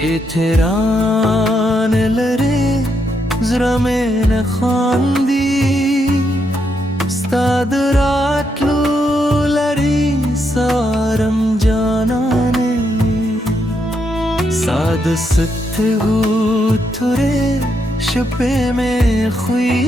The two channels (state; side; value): normal; both; correlation 0.79